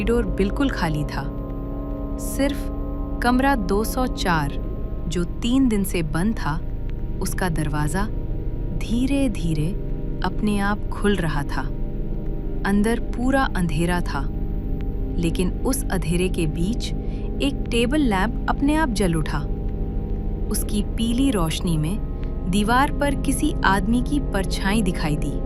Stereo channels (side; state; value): both; identical; correlation 1.00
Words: बिल्कुल खाली था। सिर्फ कमरा 204, जो 3 दिन से बंद था, उसका दरवाजा धीरे धीरे अपने आप खुल रहा था। अंदर पूरा अंधेरा था, लेकिन उस अंधेरे के बीच एक टेबल लैंप अपने आप जल उठा। उसकी पीली रोशनी में दीवार पर किसी आदमी की परछाई दिखाई दी।